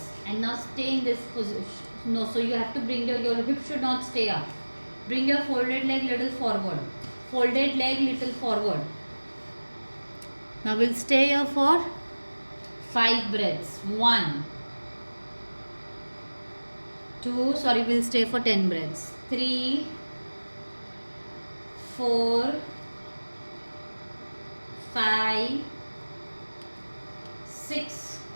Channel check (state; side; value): inverted; both; correlation -1.00